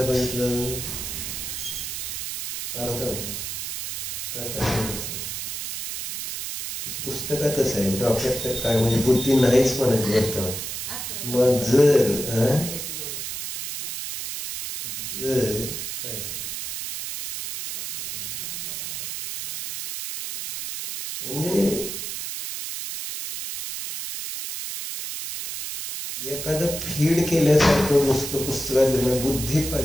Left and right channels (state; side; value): noise; right; hiss, 5 dB below the sound